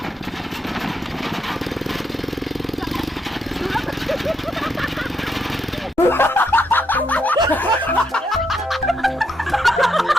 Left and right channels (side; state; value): both; normal; correlation 0.78